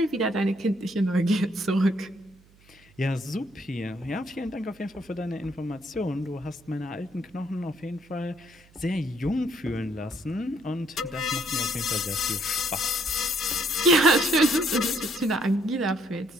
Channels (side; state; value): right; noise; hum, 28 dB below the sound